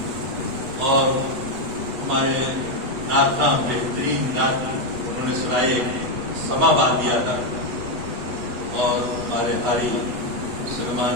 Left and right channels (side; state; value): left; late; 8.2 ms